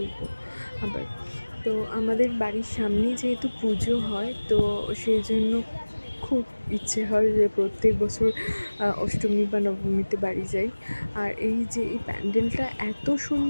আবার। তো আমাদের বাড়ির সামনে যেহেতু পুজো হয়, তো সেই জন্য খুব ইচ্ছে হয় যে প্রত্যেক বছর অষ্টমী বা নবমীতে বাড়ি যাই। আর এই যে এই প্যান্ডেলটা এত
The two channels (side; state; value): both; inverted; correlation -1.00